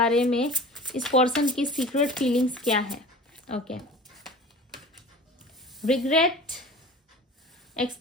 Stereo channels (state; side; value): normal; both; correlation 0.40